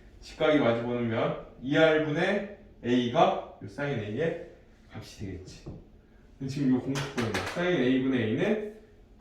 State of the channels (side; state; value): both; identical; correlation 1.00